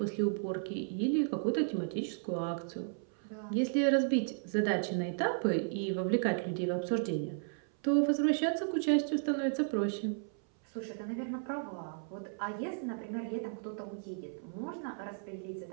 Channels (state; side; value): silent; left; 55 dB below the other